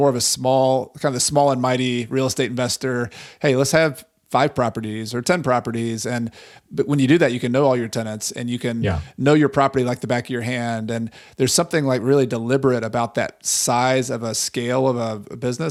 of a small and mighty real estate investor. Hey, let's have 5 properties or 10 properties. But when you do that, you can know all your tenants and you can know your property like the back of your hand. And there's something like really deliberate about that size of a scale of a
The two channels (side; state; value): both; identical; correlation 1.00